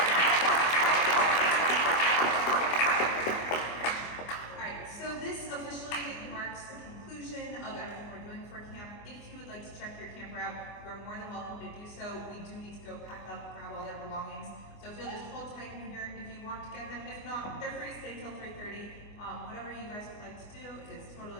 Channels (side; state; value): right; late; 24 ms